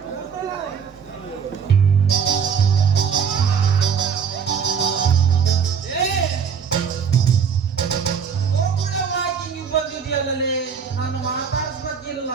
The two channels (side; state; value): left; quieter; 6.8 dB